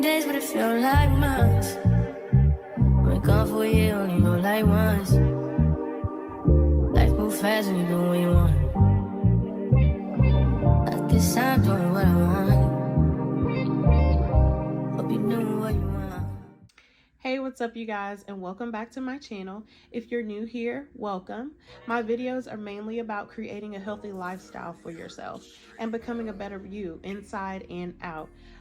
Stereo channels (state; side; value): identical; both; correlation 1.00